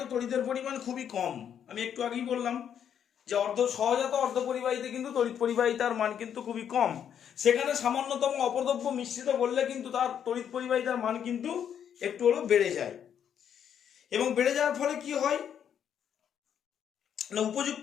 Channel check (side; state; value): right; quieter; 8.8 dB